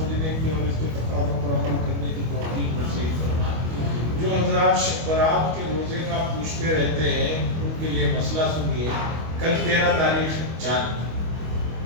کی اور اس کے تقاضوں پر عمل کرنے کی توفیق نصیب فرمائے۔ جو حضرات شب برات کے روزے کا پوچھتے رہتے ہیں ان کے لیے مسئلہ سنیے۔ کل 13 تاریخ چاند،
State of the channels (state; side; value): late; left; 25 ms